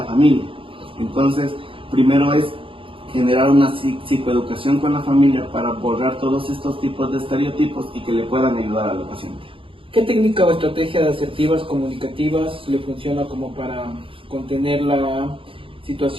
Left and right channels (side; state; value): left; late; 0.26 ms